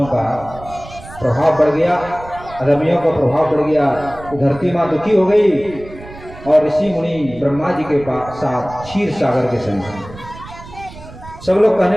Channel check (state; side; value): noise; right; rumble, 17 dB below the sound